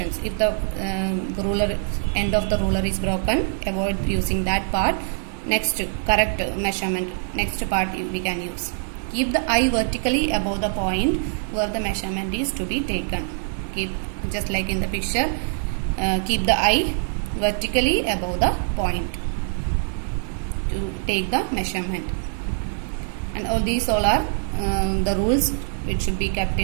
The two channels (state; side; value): silent; left; 63 dB below the other